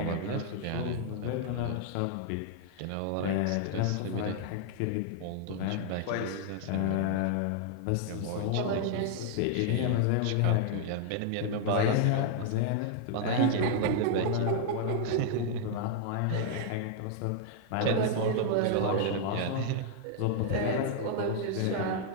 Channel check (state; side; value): different; both; correlation -0.01